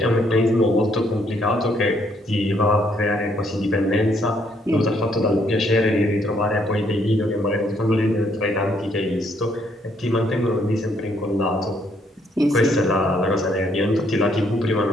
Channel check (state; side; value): normal; both; correlation 0.70